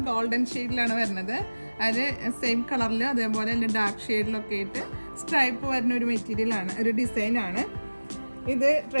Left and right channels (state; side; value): inverted; both; correlation -1.00